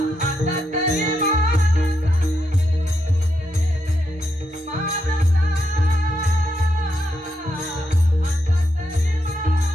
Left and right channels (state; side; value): normal; both; correlation 0.82